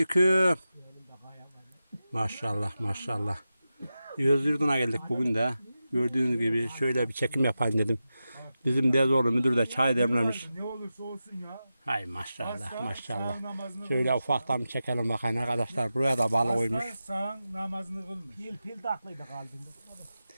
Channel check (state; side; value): inverted; both; correlation -0.92